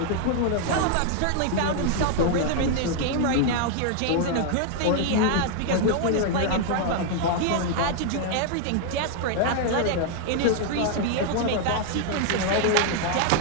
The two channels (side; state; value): both; different; correlation 0.00